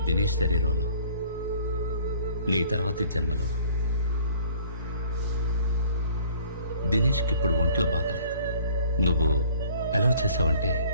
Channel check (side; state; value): both; inverted; correlation -0.54